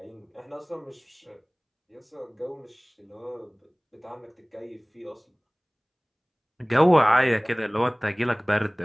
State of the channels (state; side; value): identical; both; correlation 1.00